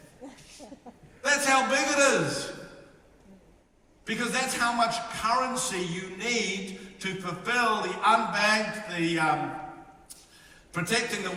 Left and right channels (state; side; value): identical; both; correlation 1.00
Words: That's how big it is. Because that's how much currency you need to fulfill the unbanked, the protecting the